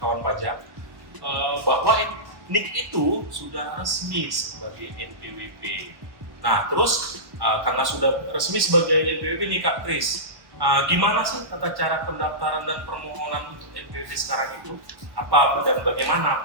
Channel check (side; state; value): left; late; 1.1 ms